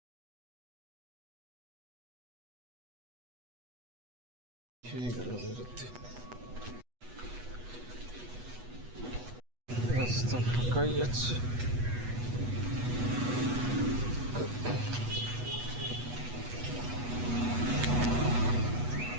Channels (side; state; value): left; late; 8.2 ms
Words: হয়ে গেল বেরোতে, রাস্তা ফাঁকাই আছে।